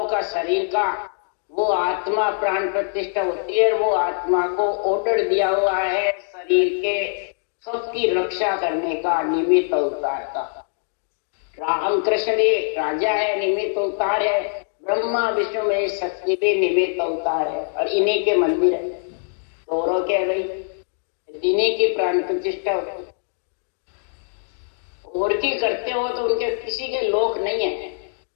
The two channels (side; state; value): right; silent; digital silence